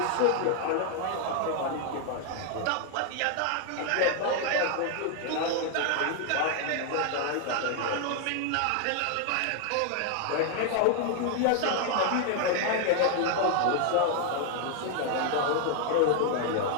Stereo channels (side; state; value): both; different; correlation 0.00